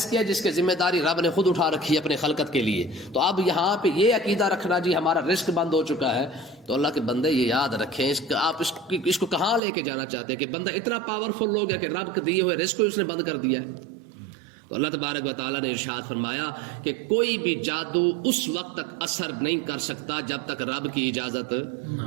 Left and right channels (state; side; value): drops out; left; at 9.6 s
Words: ہے جس کے ذمہ داری رب نے خود اٹھا رکھی ہے اپنے خلقت کے لیے۔ تو اب یہاں پہ یہ عقیدہ رکھنا جی ہمارا رزق بند ہو چکا ہے، تو اللہ کے بندے یہ یاد رکھیں آپ اس کو کہاں لے کے جانا چاہتے ہیں کہ بندہ اتنا پاورفل ہو گیا کہ رب کے دیے ہوئے رزق کو اس نے بند کر دیا ہے۔ تو اللہ تبارک و تعالیٰ نے ارشاد فرمایا کہ کوئی بھی جادو اس وقت تک اثر نہیں کر سکتا جب تک رب کی اجازت،